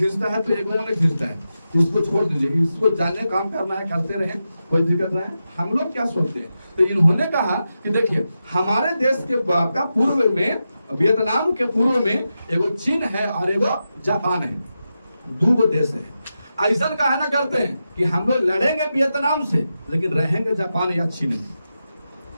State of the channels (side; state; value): both; inverted; correlation -0.89